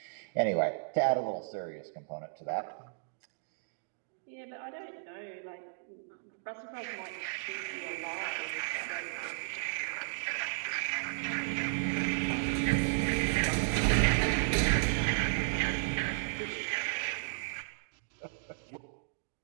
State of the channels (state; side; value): silent; left; digital silence